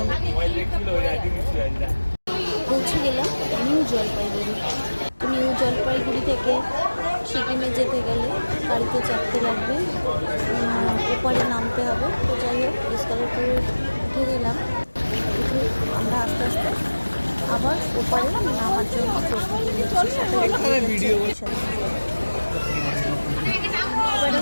পৌঁছে গেলাম নিউ জলপাইগুড়ি। তো নিউ জলপাইগুড়ি থেকে সিকিমে যেতে গেলে গাড়িতে চাপতে লাগবে, ওপারে নামতে হবে। তো যাই হোক, এসকালেটরে উঠে গেলাম। উঠে আমরা আস্তে আস্তে আবার ওপারে নামার জন্য প্রস্তুতি নিচ্ছি। এবারে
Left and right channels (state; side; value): inverted; both; correlation -1.00